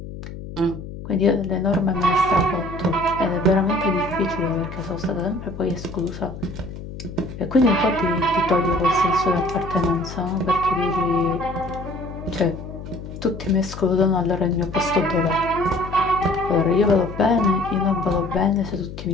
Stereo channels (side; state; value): left; noise; hum, 11 dB below the sound